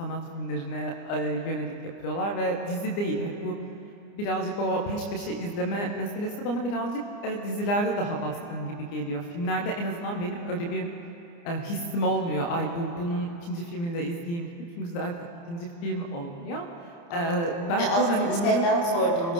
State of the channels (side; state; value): right; late; 29 ms